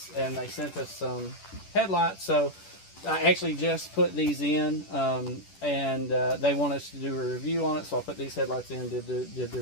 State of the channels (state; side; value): late; right; 10 ms